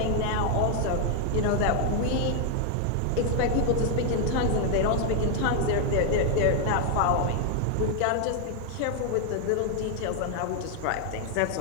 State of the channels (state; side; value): different; both; correlation 0.00